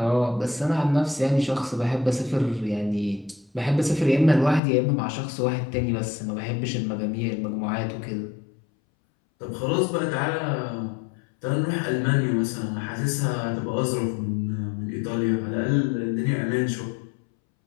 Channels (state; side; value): drops out; right; at 4.6 s